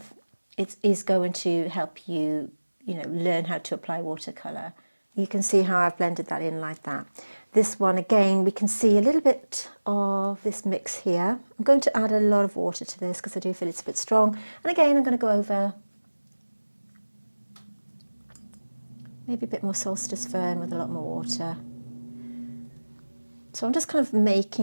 it is going to help you, learn how to apply watercolour. You can see how I've blended that in like that. This one, again, we can see a little bit of this mix here. I'm going to add a lot of water to this because I do feel it's a bit strong. And again, I'm going to go over maybe a bit more Solstice Fern with a lot more water. So I'm just kind of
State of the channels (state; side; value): inverted; both; correlation -1.00